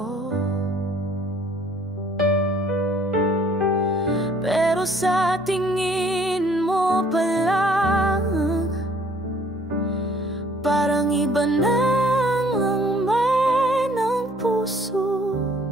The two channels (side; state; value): both; normal; correlation 0.58